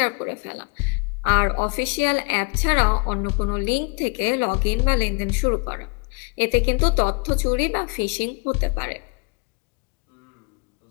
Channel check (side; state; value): right; quieter; 33.0 dB